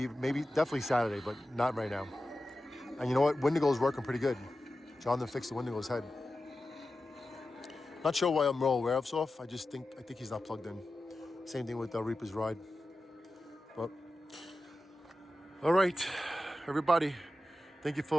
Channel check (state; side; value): normal; both; correlation 0.93